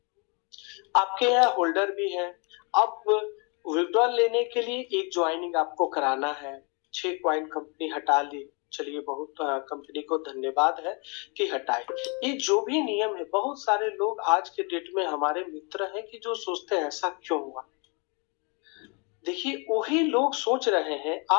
आपके यहाँ होल्डर भी है। अब विड्रॉल लेने के लिए एक ज्वाइनिंग आपको कराना है। 6 कॉइन कंपनी हटा ली, चलिए बहुत कंपनी को धन्यवाद है कि हटाए। ये जो भी नियम है, बहुत सारे लोग आज के डेट में हमारे मित्र हैं कि जो सोचते हैं ऐसा क्यों हुआ। देखिए वही लोग सोच रहे हैं,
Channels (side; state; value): right; quieter; 33.0 dB